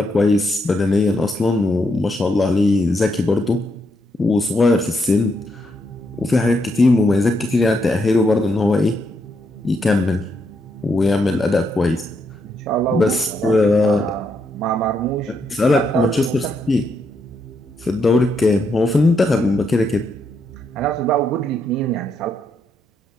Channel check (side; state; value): both; normal; correlation 0.78